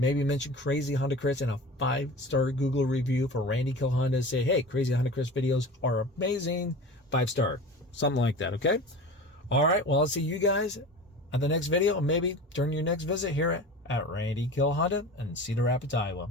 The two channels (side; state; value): both; normal; correlation 0.35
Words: mention Crazy Honda Chris and a 5-star Google review for Randy Kill Honda. Say, hey, Crazy Honda Chris videos are amazing. 5-star, something like that, okay? All right, well, I'll see you guys at the next video, and maybe during your next visit here at Randy Kill Honda in Cedar Rapids, Iowa.